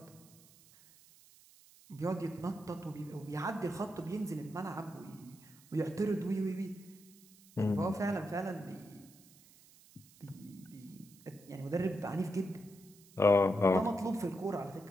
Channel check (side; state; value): right; noise; hiss, 24 dB below the sound